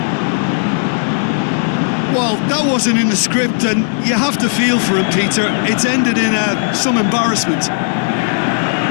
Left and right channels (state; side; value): silent; right; 68 dB below the other